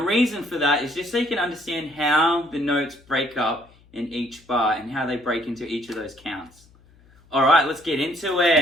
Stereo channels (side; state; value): left; noise; hum, 28 dB below the sound